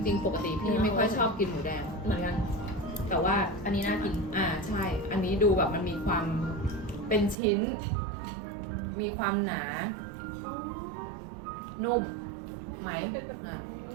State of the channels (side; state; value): left; drops out; at 7.4 s